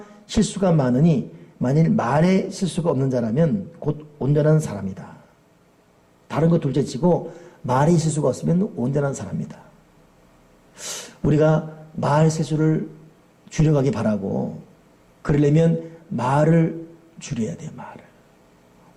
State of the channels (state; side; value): identical; both; correlation 1.00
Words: 실수가 많으니 만일 말에 실수가 없는 자라면 곧 온전한 사람이다. 다른 거 둘째치고 말에 실수가 없으면 온전한 사람이다. 우리가 말 실수를 줄여가기 바라고 그러려면 말을 줄여야 돼요. 말을.